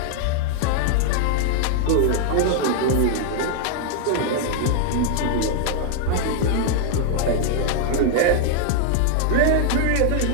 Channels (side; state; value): both; different; correlation 0.00